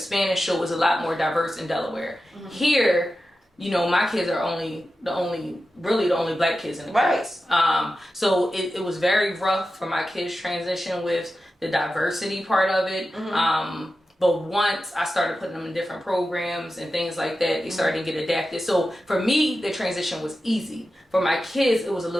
Spanish. So it was a lot more diverse in Delaware. Mm-hmm. Here, my kids are the only black kids in the class. So it was very rough for my kids' transition with the diversity part of it. Mm-hmm. But once I started putting them in different programs and things like that, they started to get adapted. So for me, the transition was easy. For my kids, it was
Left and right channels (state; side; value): normal; both; correlation 0.92